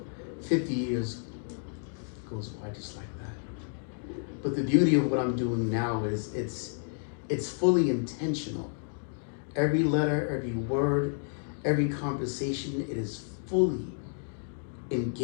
50 years goes by just like that. But the beauty of what I'm doing now is it's fully intentional. Every letter, every word, every conversation, it is fully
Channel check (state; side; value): silent; right; digital silence